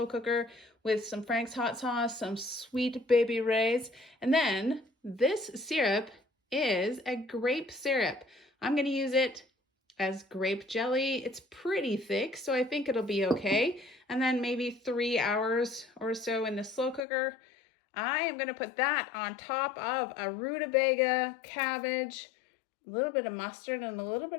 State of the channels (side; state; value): right; drops out; at 17.0 s